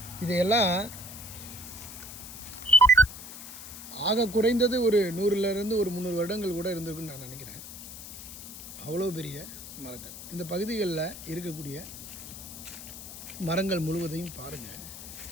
இதையெல்லாம் ஆக குறைந்தது ஒரு 100லேருந்து ஒரு 300 வருடங்கள் கூட இருந்திருக்குன்னு நான் நினைக்கிறேன். அவ்வளோ பெரிய மரங்கள். இந்த பகுதிகளில் இருக்கக்கூடிய மரங்கள் முழுவதையும் பாருங்கள்.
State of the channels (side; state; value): left; noise; hiss, 12 dB below the sound